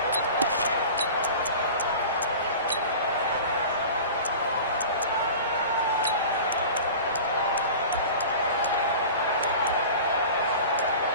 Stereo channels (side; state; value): both; inverted; correlation -0.37